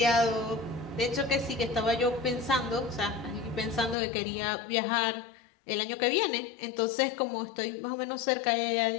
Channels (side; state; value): right; drops out; at 4.0 s